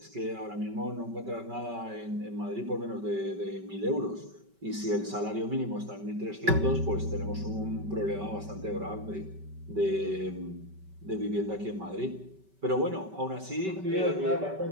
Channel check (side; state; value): left; late; 5.2 ms